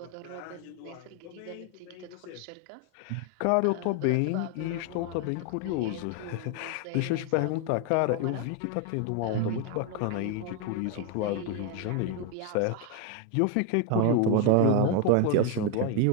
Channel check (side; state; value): both; different; correlation 0.01